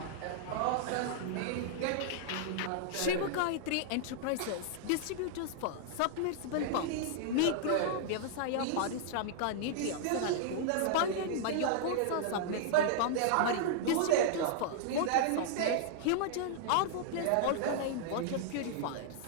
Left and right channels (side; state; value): both; different; correlation -0.01